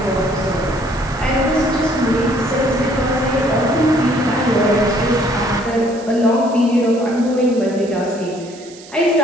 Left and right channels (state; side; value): noise; right; hiss, 20 dB below the sound